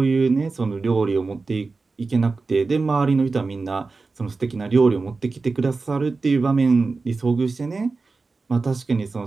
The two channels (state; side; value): quieter; left; 4.0 dB